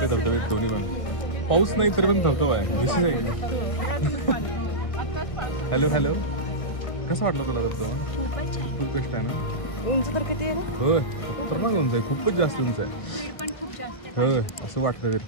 धबधबे दोन्ही पण? पाऊस नाही तरी पण धबधबा आहे. विशेष आहे की. हॅलो हॅलो, कसा वाटला तुला धबधबा? खूप बेस्ट आहे ना. उंच तर किती आहे ना? होय खतरनाक उंच आहे, खूपच जास्त उंच आहे. होय असं वाटतं तरी.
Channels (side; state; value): right; late; 1.6 ms